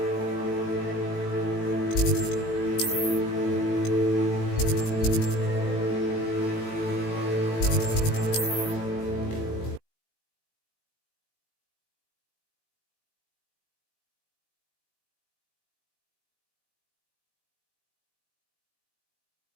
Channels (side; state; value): right; late; 18 ms